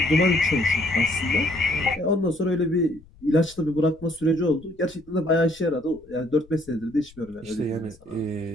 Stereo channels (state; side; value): noise; left; rumble, 25 dB below the sound